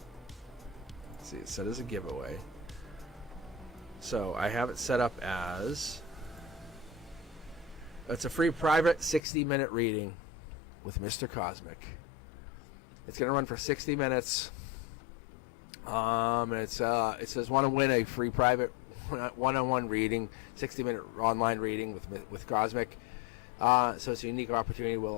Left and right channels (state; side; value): drops out; right; at 9.2 s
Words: Let's see, it's set as a giveaway. So I have it set up as, it's a free private 60-minute reading with Mr. Cosmic. It's going to run for 60 minutes. And it says, want to win a free private one-on-one reading, 60-minute online reading with Cosmic. So it's a unique opportunity.